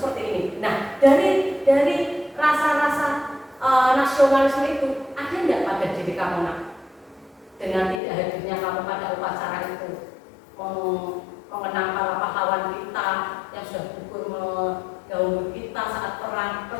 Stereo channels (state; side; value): drops out; right; at 8.0 s